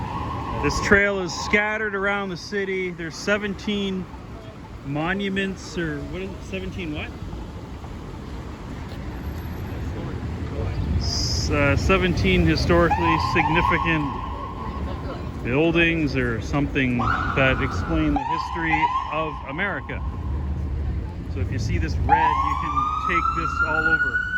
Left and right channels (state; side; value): identical; both; correlation 1.00